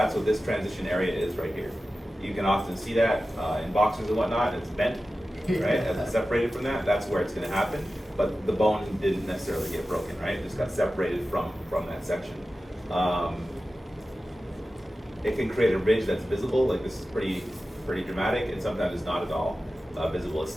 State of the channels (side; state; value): both; normal; correlation 0.94